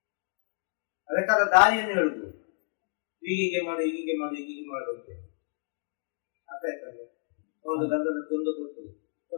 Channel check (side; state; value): right; silent; digital silence